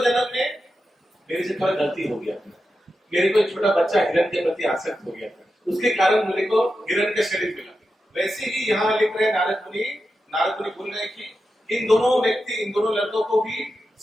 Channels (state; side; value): normal; both; correlation 0.90